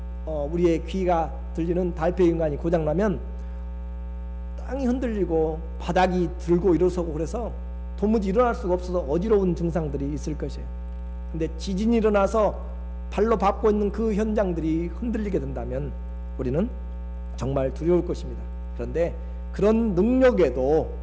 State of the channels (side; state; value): both; identical; correlation 1.00